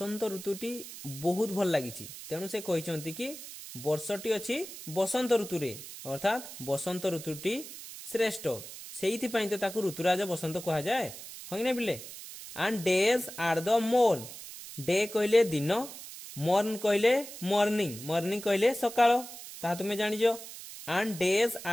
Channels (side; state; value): right; noise; hiss, 12 dB below the sound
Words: ऋतुटी बहुत भल लागिछि तेणु से कहिसंती कि वर्षटी अछि बसंत ऋतुरे अर्थात बसंत ऋतुटी श्रेष्ठ सेइथि पई त ताकु ऋतुराज बसंत कहा जाय हइने बिले। And days are the morn day कहले दिन मॉर्न कहले मॉर्निंग मॉर्निंग कहले सकाळ ता तुमे जानिजो। एंड डेज